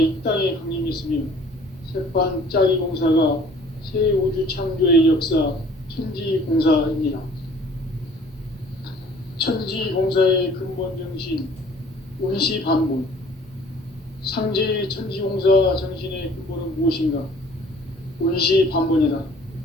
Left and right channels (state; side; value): normal; both; correlation 0.53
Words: 이 땅에 강림했으며 새판짜기 공사가 새 우주 창조의 역사 천지공사입니다. 천지공사의 근본 정신 운시반본. 상제의 천지공사 정신의 근본은 무엇인가? 운시반본이다.